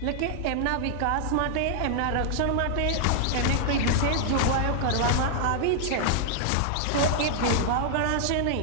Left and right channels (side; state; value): both; different; correlation -0.01